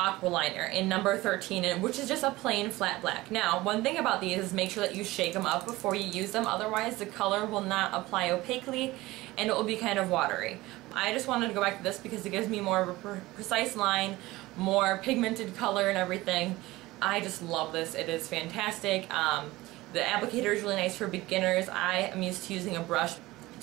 Liner in number 13, which is just a plain flat black. Now, one thing about these is make sure that you shake them up before you use them, otherwise the color will not apply opaquely and it will be kind of watery. I just wanted to go back to this because it gives me more of a precise line, more pigmented color and everything. I just love this. It is fantastic. The applicator is really nice for beginners. I am used to using a brush,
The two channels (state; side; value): quieter; left; 18.9 dB